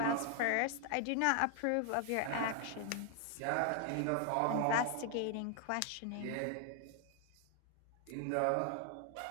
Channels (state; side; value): different; both; correlation 0.00